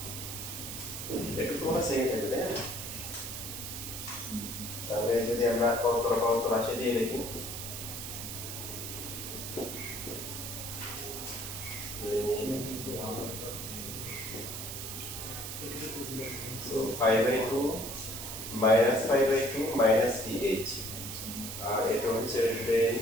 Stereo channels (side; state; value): right; noise; hiss, 7 dB below the sound